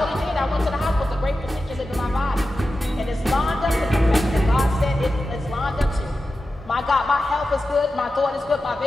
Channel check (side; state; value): both; normal; correlation 0.92